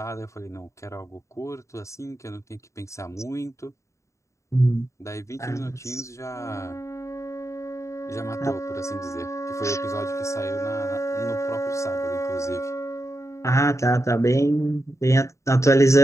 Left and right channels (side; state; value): right; late; 0.14 ms